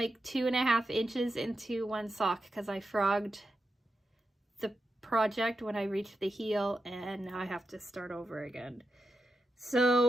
2.5 inches into one sock because I frogged the project when I reached the heel, and now I have to start over again.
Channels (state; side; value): normal; both; correlation 0.88